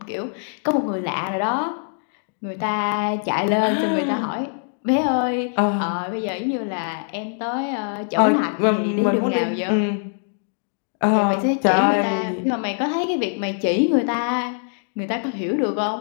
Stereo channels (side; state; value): right; silent; digital silence